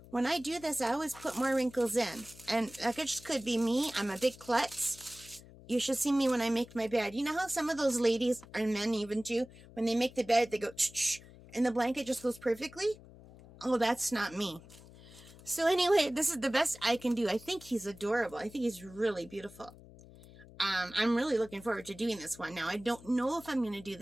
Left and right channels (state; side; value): noise; left; hum, 20 dB below the sound